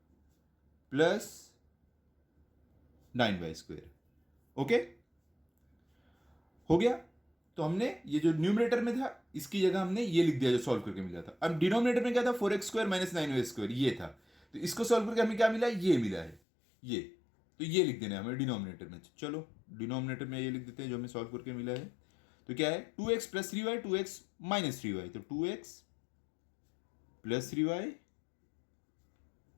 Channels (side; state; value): right; drops out; at 16.4 s